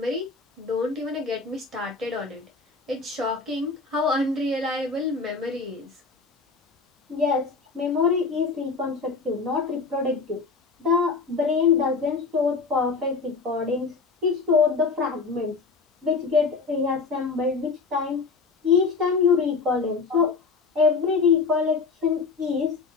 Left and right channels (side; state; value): right; quieter; 4.6 dB